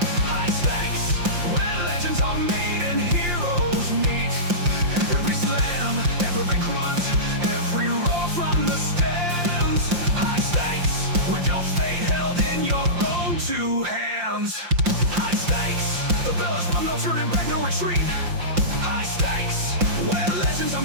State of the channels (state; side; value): late; left; 5.7 ms